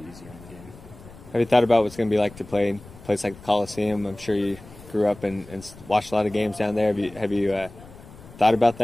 easier in the game. Have you thought about what's going to be like to play in a place like the Coliseum? I'm sure you grew up and watched a lot of games down there. Have you thought about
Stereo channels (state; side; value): noise; left; rumble, 20 dB below the sound